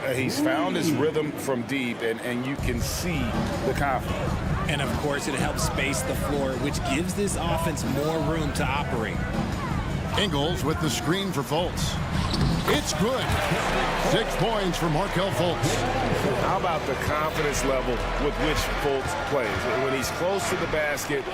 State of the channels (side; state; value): both; identical; correlation 1.00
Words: He's found his rhythm from deep, and you can see the confidence. And, of course, it helps space the floor, which gives this offense more room to operate. Ingles with the screen for Fultz. It's good. 6 points for Markelle Fultz. How about the confidence level with which Fultz plays? When he's close to the basket,